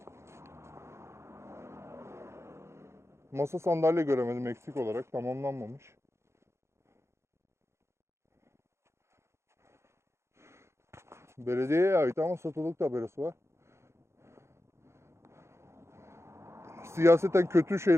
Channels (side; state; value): left; late; 0.13 ms